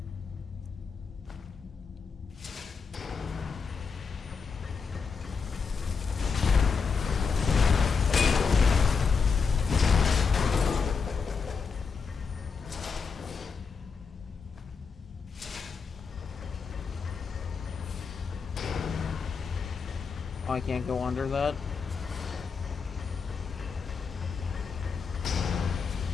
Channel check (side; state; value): right; quieter; 5.4 dB